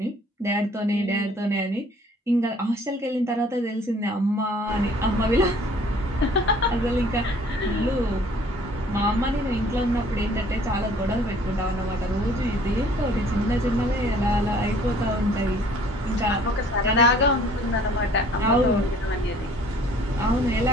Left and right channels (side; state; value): both; normal; correlation 0.55